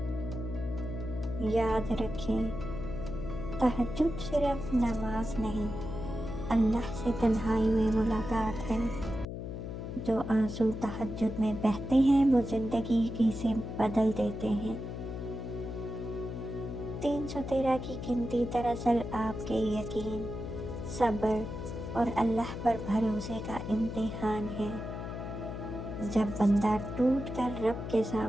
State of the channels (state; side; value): noise; left; hum, 7 dB below the sound